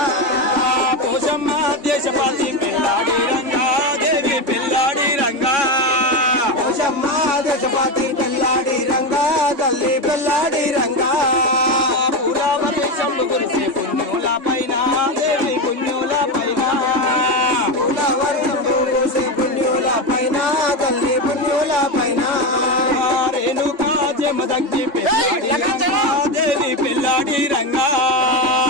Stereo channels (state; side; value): late; left; 3.6 ms